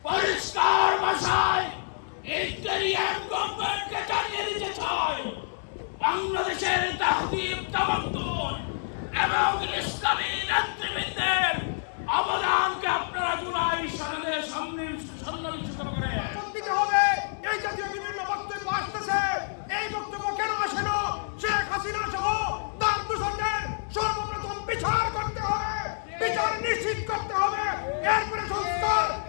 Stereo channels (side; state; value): right; silent; 60 dB below the other